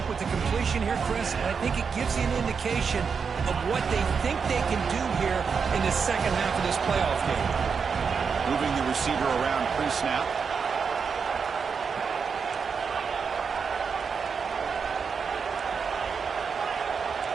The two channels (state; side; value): quieter; left; 5.9 dB